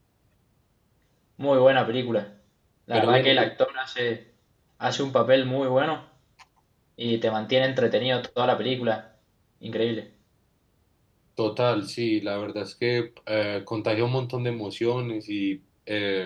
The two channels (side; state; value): both; identical; correlation 1.00